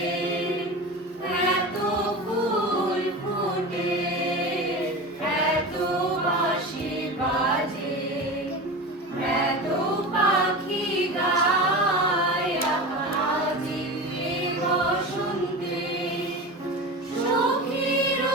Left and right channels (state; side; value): normal; both; correlation 0.29